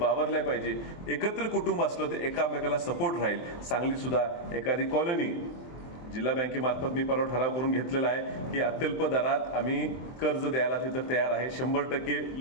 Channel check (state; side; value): late; right; 24 ms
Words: पाहिजे. एकत्र कुटुंब असलं तर एकामेकाला सपोर्ट राहील. सांगली सुद्धा एखादी कॉलनी जिल्हा बँकेमार्फत मी परवा ठराव करून घेतलेला आहे की अत्यल्प दरात आम्ही कर्ज द्यायला तिथं तयार आहे. 100%